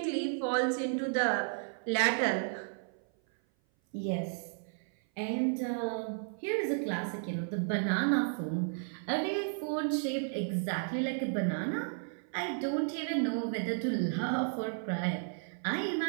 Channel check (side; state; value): left; silent; 56 dB below the other